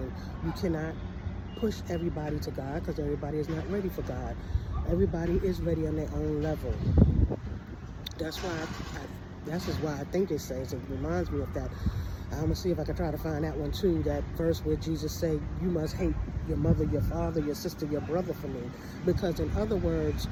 You cannot push everybody to God, because everybody is not ready for God. Everybody is ready on their own level. That's why I think it says, it reminds me of that. I'm going to see if I can try to find that one too, that verse where Jesus said, you must hate your mother, your father, your sister, your brother for me. Because in other words,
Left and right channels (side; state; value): both; identical; correlation 1.00